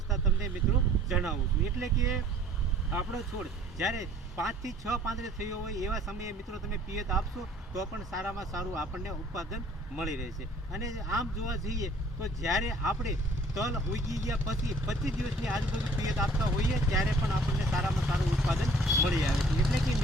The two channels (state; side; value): normal; both; correlation 0.55